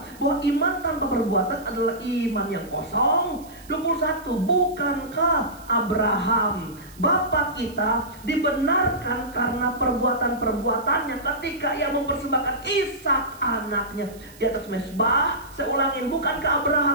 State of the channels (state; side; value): noise; right; hiss, 23 dB below the sound